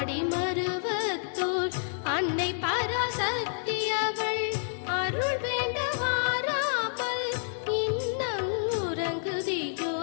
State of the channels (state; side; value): silent; right; 59 dB below the other